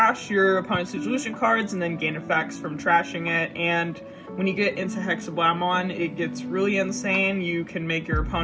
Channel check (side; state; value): both; identical; correlation 1.00